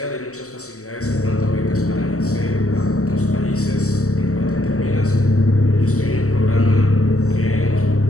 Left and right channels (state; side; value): late; right; 0.65 ms